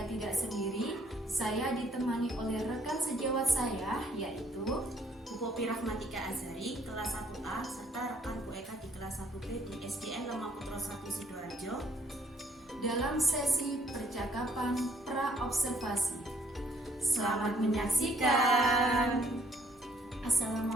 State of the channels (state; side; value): normal; both; correlation 0.65